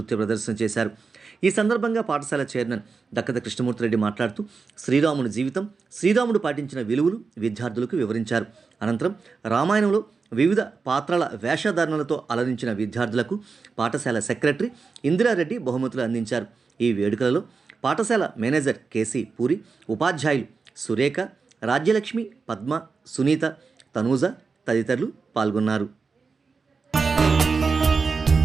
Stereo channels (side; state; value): left; quieter; 4.8 dB